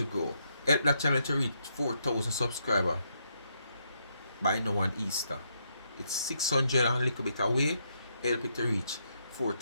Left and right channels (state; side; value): inverted; both; correlation -0.77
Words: grow. Help that channel to reach 4,000 subscribers by now on Easter. It's 600 and a little bit away. Help it to reach